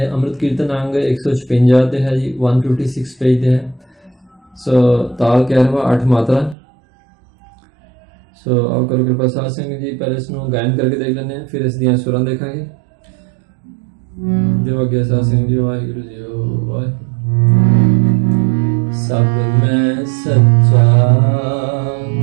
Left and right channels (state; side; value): drops out; left; at 6.6 s